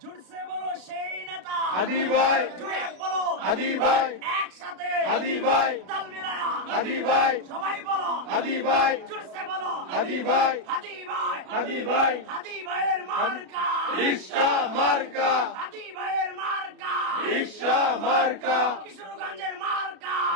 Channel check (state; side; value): late; left; 32 ms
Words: জুড়ছে বলো সেই নেতা হাদি ভাই, জুড়ে বলো হাদি ভাই, একসাথে হাদি ভাই, তাল মিলায়া হাদি ভাই, সবাই বলো হাদি ভাই, জুড়ছে বলো হাদি ভাই, হাদি ভাই, হাদি ভাই, হাদি ভাইয়ের মার্কা রিক্সা মার্কা, হাদি ভাইয়ের মার্কা রিক্সা মার্কা, কিশোরগঞ্জের মার্কা